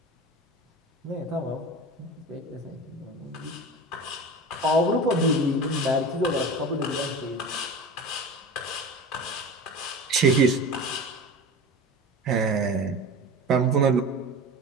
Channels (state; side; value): normal; both; correlation 0.32